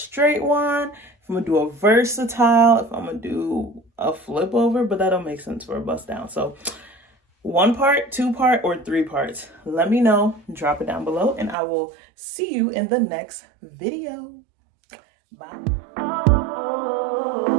one, if I'm gonna do a versatile, if I'm gonna do a flip over, but that don't make sense for a bust down. So 1 part, 2 part, or 3 parts. Let me know, drop it down below, and I will see you in the next video. Bye.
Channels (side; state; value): left; drops out; at 11.6 s